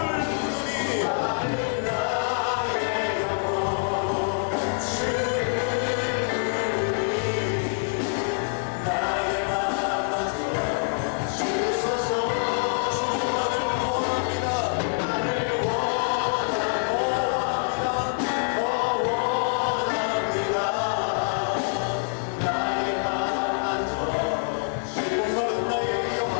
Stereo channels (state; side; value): silent; right; 61 dB below the other